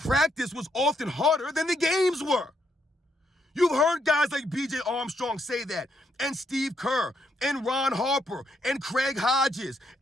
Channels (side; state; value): both; normal; correlation 0.76